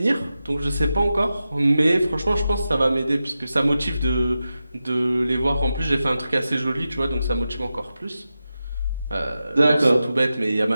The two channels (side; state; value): both; inverted; correlation -0.92